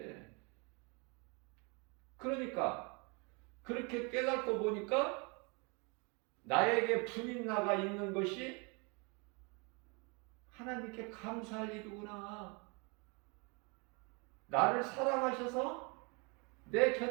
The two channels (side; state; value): left; quieter; 31.6 dB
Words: 그러니까 그렇게 깨닫고 보니까 나에게 분인나가 있는 것이 하나님께 감사할 일이구나. 나를 사랑하셔서 내